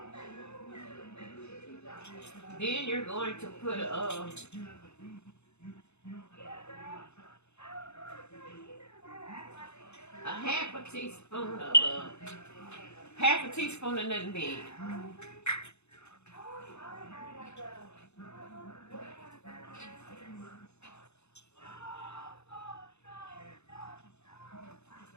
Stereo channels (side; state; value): right; late; 0.81 ms